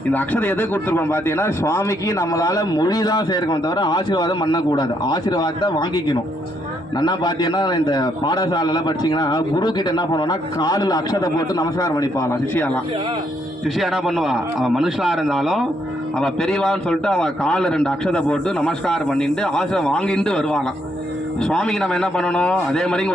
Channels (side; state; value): both; normal; correlation 0.74